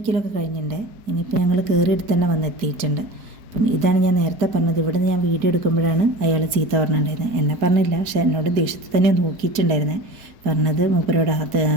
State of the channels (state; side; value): late; left; 4.6 ms